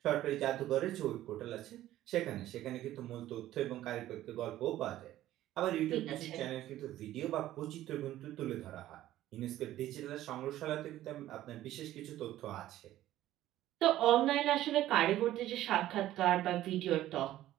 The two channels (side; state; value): left; quieter; 14.0 dB